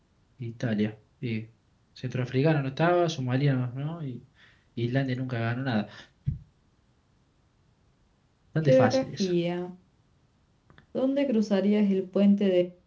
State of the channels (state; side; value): identical; both; correlation 1.00